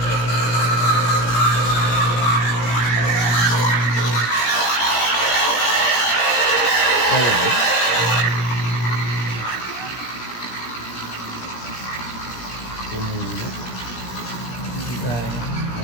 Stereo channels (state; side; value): late; right; 17 ms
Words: Kaya ba? Tumulong. hindi tayo.